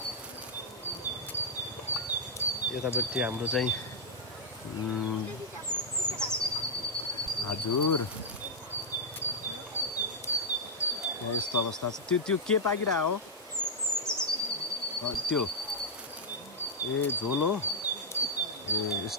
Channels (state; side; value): normal; both; correlation -0.05